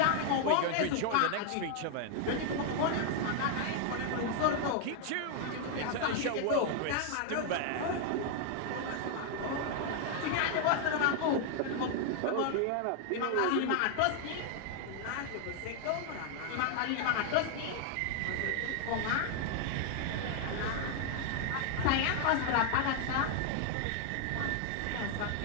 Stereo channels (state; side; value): different; both; correlation 0.00